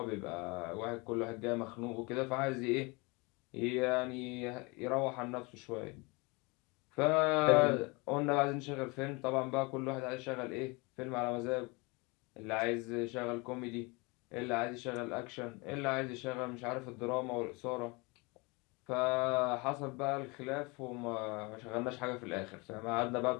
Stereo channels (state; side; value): quieter; right; 27.3 dB